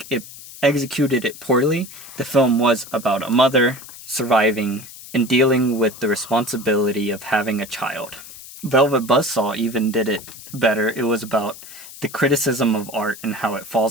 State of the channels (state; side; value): noise; left; hiss, 16 dB below the sound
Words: it executed it poorly, the film was about a mother surviving and dealing with the responsibility of having a child. Velvet Buzzsaw even did it better. It was about the criticism of art and how it